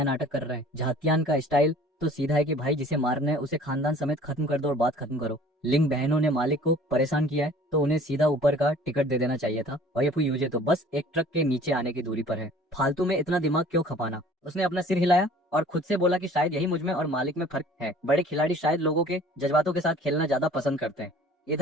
नाटक कर रहे हैं। झातियान का स्टाइल तो सीधा है कि भाई जिसे मारना है उसे खानदान समेत खत्म कर दो और बात खत्म करो। लिंग बहनों ने मालिक को परेशान किया है तो उन्हें सीधा ऊपर का टिकट दे देना चाहिए था, और ये फू यूजे तो बस एक ट्रक के नीचे आने की दूरी पर है। फालतू में इतना दिमाग क्यों खपाना। उसने अपना सिर हिलाया और खुद से बोला कि शायद यही मुझ में और मालिक में फर्क है। बड़े खिलाड़ी शायद लोगों के जज्बातों के साथ खेलना ज्यादा पसंद करते हैं।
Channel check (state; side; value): normal; both; correlation 0.49